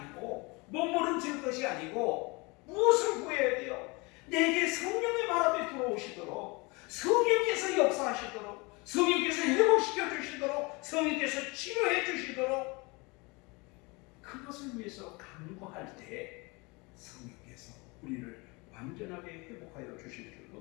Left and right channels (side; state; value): right; quieter; 26.9 dB